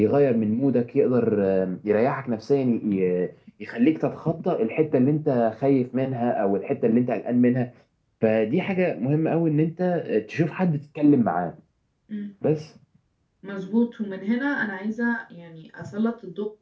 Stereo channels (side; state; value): both; identical; correlation 1.00